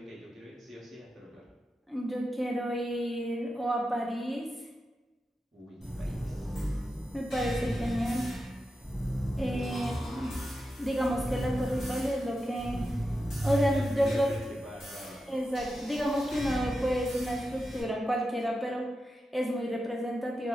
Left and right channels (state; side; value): normal; both; correlation 0.89